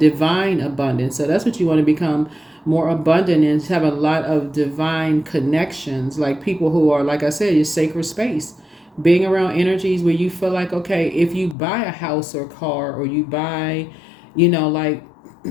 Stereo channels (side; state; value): right; drops out; at 11.6 s